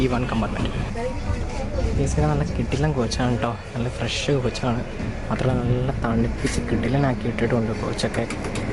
കമ്പാർട്ട്മെൻറ്റ്. ബേസിക്കലി നല്ല കിടിലൻ കോച്ചാണ് കേട്ടോ. നല്ല ഫ്രഷ് കോച്ചാണ്. മാത്രമല്ല നല്ല തണുപ്പിച്ച് കിടിലനാക്കി ഇട്ടിട്ടുണ്ട് കോച്ചൊക്കെ.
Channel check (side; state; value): both; identical; correlation 1.00